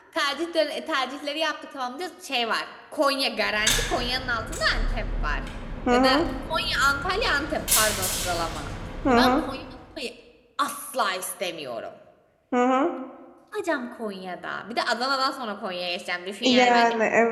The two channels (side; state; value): both; identical; correlation 1.00